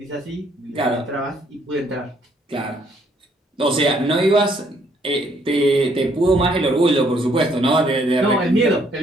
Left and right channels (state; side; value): normal; both; correlation 0.67